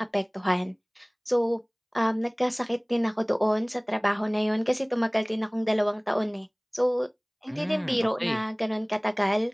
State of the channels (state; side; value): identical; both; correlation 1.00